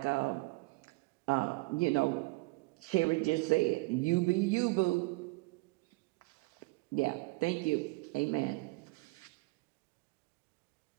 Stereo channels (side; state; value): left; quieter; 24.8 dB